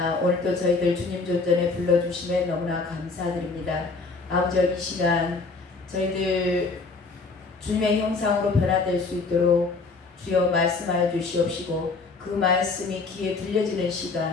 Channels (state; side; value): quieter; right; 4.0 dB